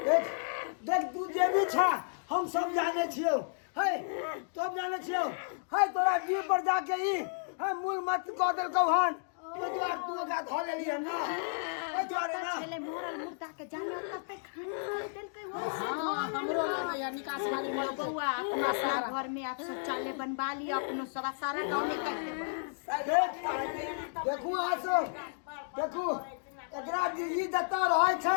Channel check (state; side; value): silent; right; digital silence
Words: देख देख तू जे भी छा हम सब जाने छियो, है सब जाने छियो, है तोरा जीव पर जाके ई है मूल मत कह देलकौ हन, तो द्वार तू ओकरा धो लेली है ना, है द्वारे ना पहले मोरल मुर्दा के जाने ओता पे खाना देल के हो हमरो या निकास वाली बउआ अपना सारा घर में आप शौचालय बनवा लियो, अपनो सब सारा गांव में कर देबो। देखू आसो देखू एकरा ई जतऽ रहै